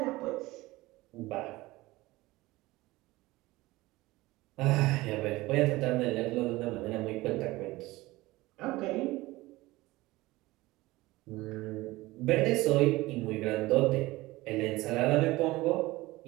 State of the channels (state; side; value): quieter; left; 19.5 dB